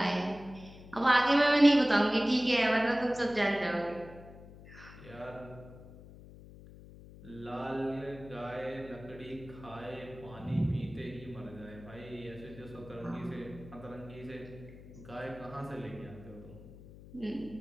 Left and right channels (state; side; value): noise; left; hum, 18 dB below the sound